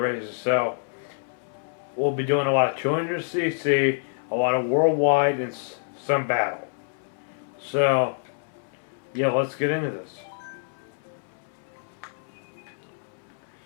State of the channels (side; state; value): right; silent; 60 dB below the other